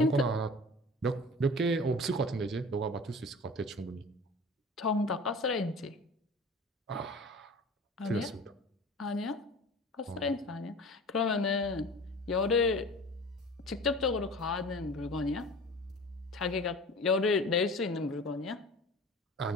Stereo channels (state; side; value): normal; both; correlation 0.39